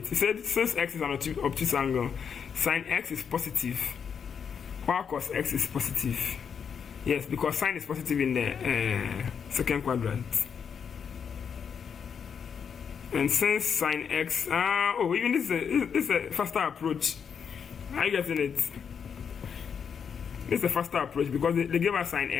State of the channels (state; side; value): quieter; right; 7.0 dB